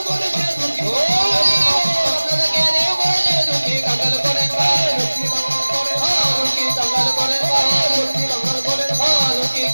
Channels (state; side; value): inverted; both; correlation -1.00